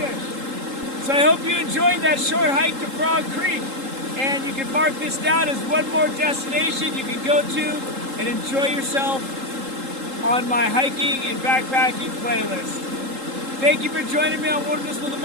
So I hope you enjoyed that short hike to Frog Creek, and you can mark this down as one more destination you can go to and enjoy yourself on my hiking and backpacking playlist. Thank you for joining me on Wilderness with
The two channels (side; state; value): left; late; 3.8 ms